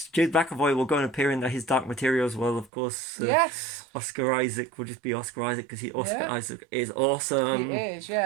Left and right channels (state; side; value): drops out; left; at 2.7 s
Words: will go and appear in his Dark Materials. Well, of course. Yes. Oscar Isaac will just be Oscar Isaac because Isaac is awesome. He is,